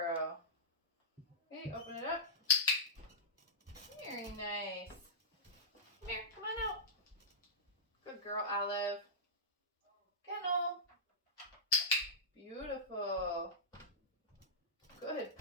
Okay, open it up. Very nice. Come here, come on out. Good girl, Olive. Kennel. Beautiful. Good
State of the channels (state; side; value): normal; both; correlation -0.16